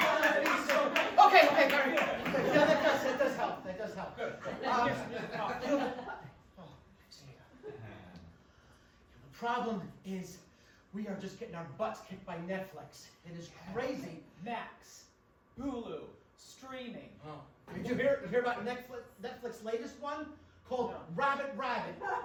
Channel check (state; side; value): identical; both; correlation 1.00